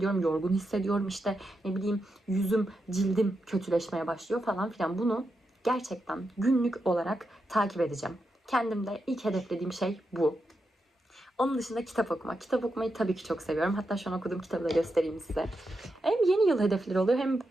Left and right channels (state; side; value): normal; both; correlation 0.86